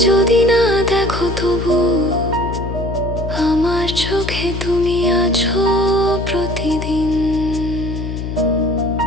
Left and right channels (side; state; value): left; noise; hum, 5 dB below the sound